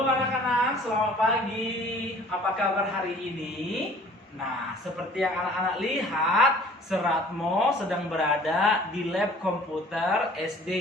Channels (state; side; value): normal; both; correlation 0.51